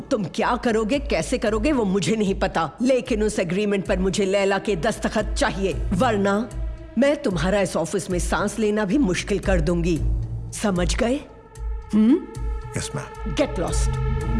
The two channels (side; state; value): both; identical; correlation 1.00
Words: क्या करोगे, कैसे करोगे वो मुझे नहीं पता, लेकिन उस एग्रीमेंट पर मुझे लैला के दस्तखत चाहिए, वरना मैं तुम्हारा इस ऑफिस में सांस लेना भी मुश्किल कर दूंगी। समझ गए? Yes ma'am. Get lost.